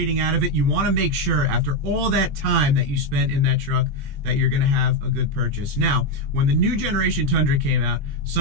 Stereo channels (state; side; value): late; left; 20 ms